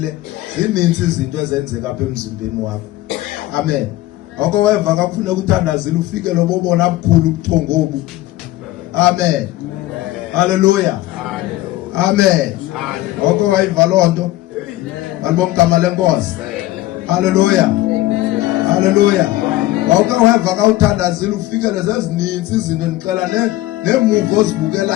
zininzi izinto ezenzeka apha emzimbeni wakho. Amen. Oko weva ka kufuneka uthandazile ufike lobobona bukhulu ubuthongo obu. Amen. Haleluya. Amen. Oko wayiva lonto. Malibonke igama lenkosi. Haleluya. Haleluya. Oko weva ka uthandazile ufike lezininzi izinto ndixela nemuvi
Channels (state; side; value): quieter; right; 16.6 dB